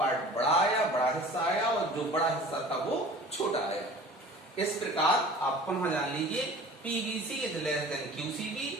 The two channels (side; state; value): both; normal; correlation 0.43